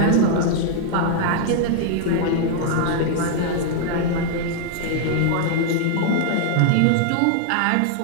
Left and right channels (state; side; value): different; both; correlation -0.01